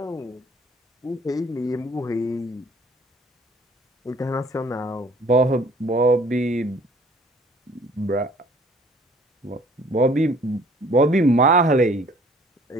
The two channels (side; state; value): both; normal; correlation 0.55